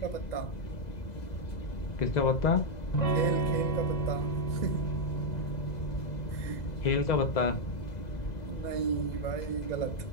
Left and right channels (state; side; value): late; right; 2.0 ms